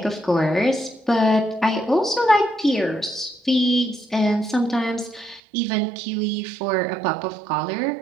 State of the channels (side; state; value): left; drops out; at 5.4 s